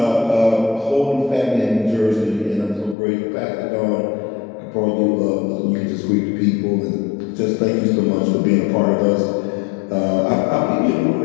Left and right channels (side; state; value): right; drops out; at 3.0 s